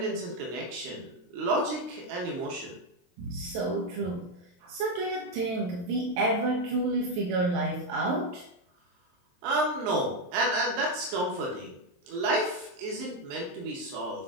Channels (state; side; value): late; left; 23 ms